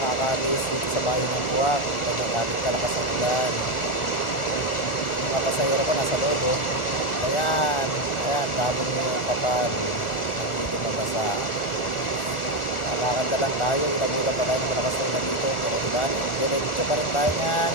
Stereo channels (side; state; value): right; late; 1.4 ms